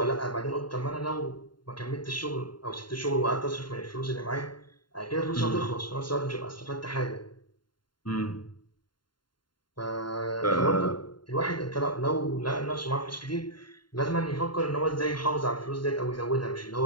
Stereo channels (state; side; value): late; right; 0.72 ms